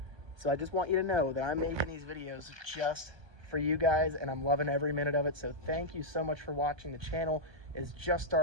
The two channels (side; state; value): left; late; 1.2 ms